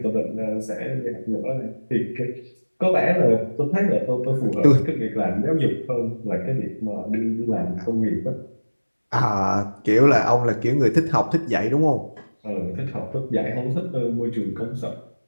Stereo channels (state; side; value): inverted; both; correlation -1.00